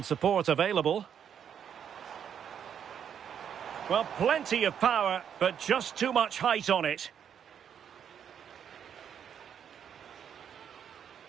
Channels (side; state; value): left; quieter; 8.4 dB